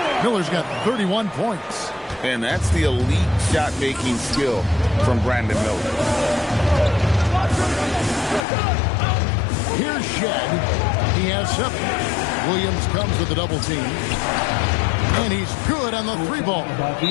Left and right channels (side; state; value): right; drops out; at 8.5 s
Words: Miller's got 31 points. And that's the elite shot-making skill from Brandon Miller. Here's Shed. He has 7. Williams comes with the double team. And he's good on the 3-ball.